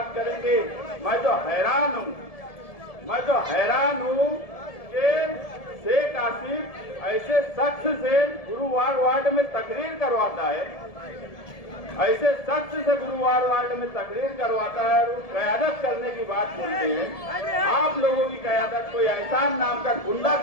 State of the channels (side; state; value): right; late; 1.7 ms